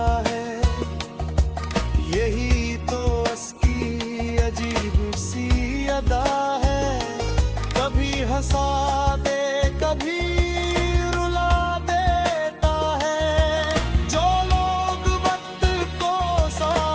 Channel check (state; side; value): identical; both; correlation 1.00